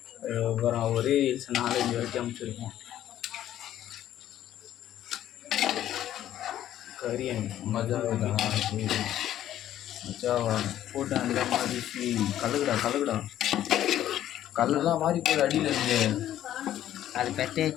அப்புறம் ஒரே ரீல்ஸ் 4-5 வரைக்கும் அனுப்பிச்சிருக்கோம். கரியன் மஜாவா மஜாவா போட்டு அந்த மாதிரி கலகுடா கலகுடா. கல்லெல்லாம் மாறி போய் அடியில் இருந்து அது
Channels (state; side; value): quieter; right; 12.1 dB